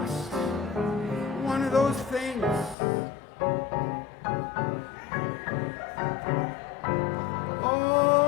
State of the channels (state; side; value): drops out; right; at 2.8 s